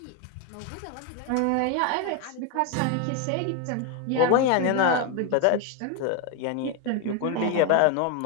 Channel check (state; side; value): different; both; correlation 0.01